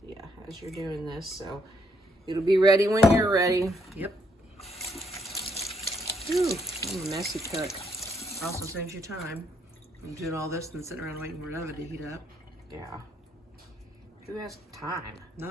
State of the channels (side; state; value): both; normal; correlation 0.72